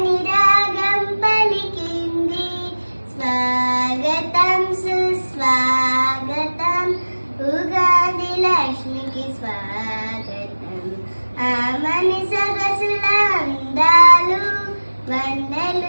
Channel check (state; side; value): inverted; both; correlation -1.00